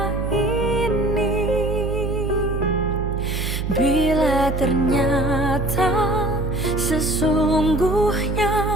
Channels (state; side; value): noise; right; hum, 2 dB below the sound